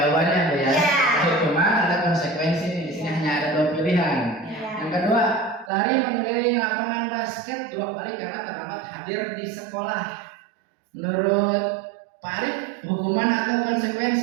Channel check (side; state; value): left; drops out; at 5.7 s